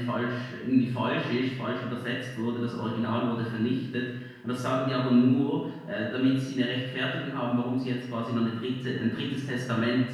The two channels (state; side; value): identical; both; correlation 1.00